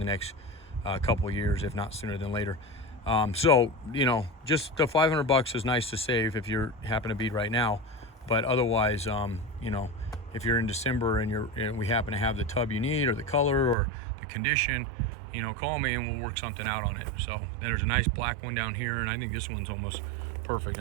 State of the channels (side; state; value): left; drops out; at 13.8 s